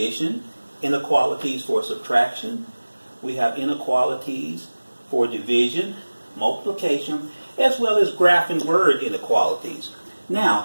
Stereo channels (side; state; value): both; inverted; correlation -1.00